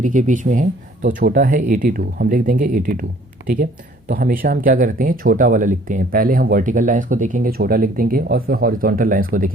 के बीच में है, तो छोटा है 82, हम लिख देंगे 82। ठीक है, तो हमेशा हम क्या करते हैं? छोटा वाला लिखते हैं। पहले हम वर्टिकल लाइंस को देखेंगे, छोटा लिख देंगे, और फिर हॉरिजॉन्टल लाइंस को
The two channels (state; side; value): normal; both; correlation 0.56